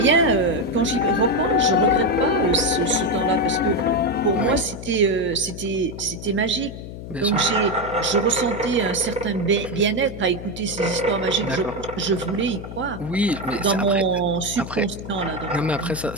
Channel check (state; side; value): noise; left; hum, 11 dB below the sound